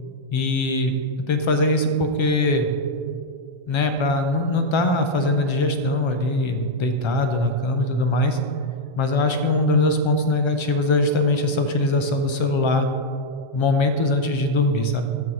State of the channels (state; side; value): late; right; 1.3 ms